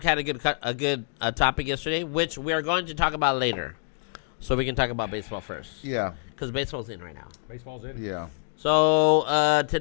had a good topic yesterday, which we are going to talk about later. So we can talk about baseball first. Yeah. Because baseball's in right now. Baseball's in. Yeah. So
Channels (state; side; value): silent; right; digital silence